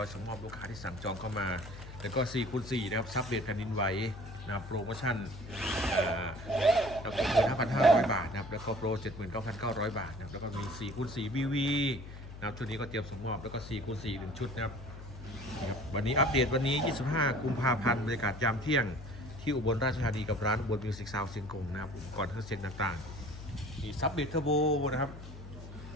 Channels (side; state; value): left; noise; hum, 13 dB below the sound